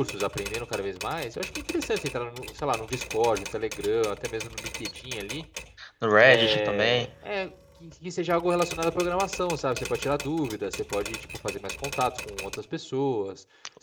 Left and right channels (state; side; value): identical; both; correlation 1.00